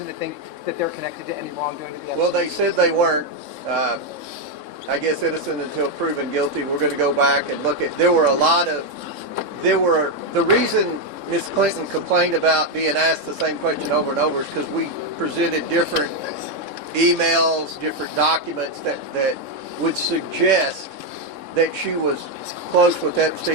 to think that they're connected to any wrongdoing to the Epstein? Well, they said they weren't. I guess innocent until proven guilty. We're going to go back and look at. The reason Ms. Clinton complained about being asked the same question over and over is because we presented different emails, different documents that would suggest that she was close with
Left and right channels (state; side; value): late; left; 3.6 ms